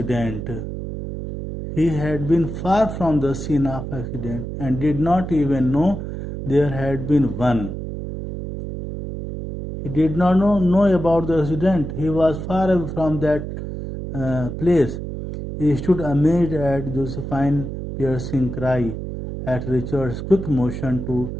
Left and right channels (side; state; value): right; noise; hum, 7 dB below the sound